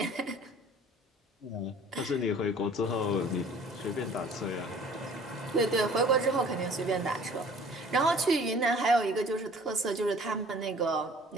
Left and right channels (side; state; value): both; normal; correlation 0.50